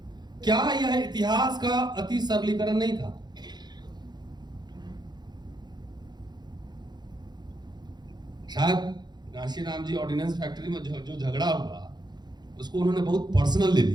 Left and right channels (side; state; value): left; late; 0.21 ms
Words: क्या यह इतिहास का अति सरलीकरण नहीं था? शायद कांशीराम जी ऑर्डिनेंस फैक्ट्री में जो झगड़ा हुआ उसको उन्होंने बहुत पर्सनल ले